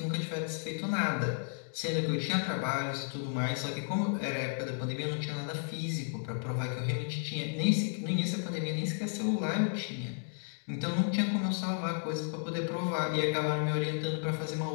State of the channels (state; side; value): silent; right; digital silence